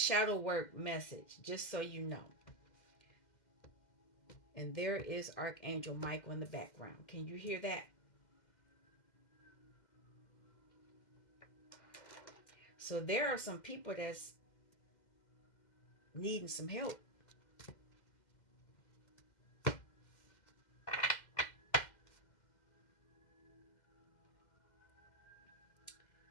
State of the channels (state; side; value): late; right; 2.0 ms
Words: work message, just so you know. And there is Archangel Michael in the background. Can you hear that? So there are some people that's needing some help.